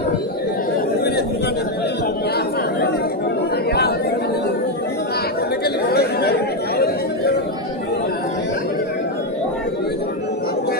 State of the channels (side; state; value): both; normal; correlation 0.06